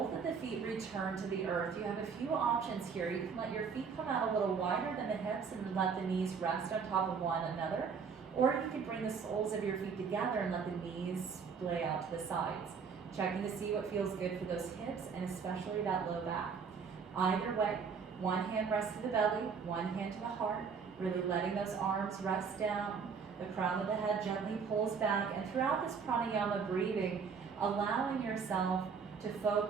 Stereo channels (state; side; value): quieter; left; 5.9 dB